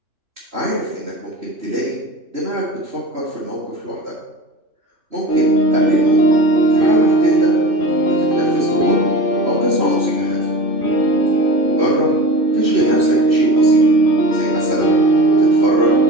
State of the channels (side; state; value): left; late; 3.1 ms